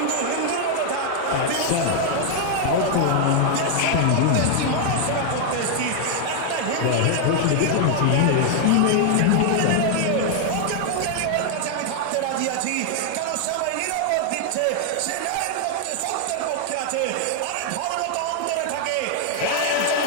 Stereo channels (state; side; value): different; both; correlation 0.00